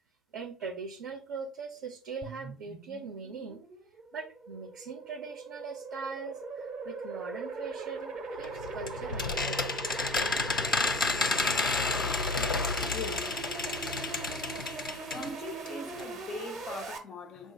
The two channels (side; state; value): both; normal; correlation 0.41